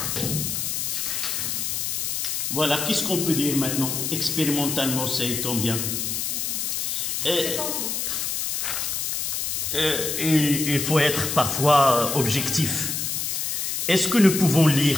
Voilà, qu'est-ce qu'on peut dire maintenant? Expérimentalement, c'est combien? Il faut être parfois objectif. Est-ce que nous pouvons lire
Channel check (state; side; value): noise; left; hiss, 1 dB below the sound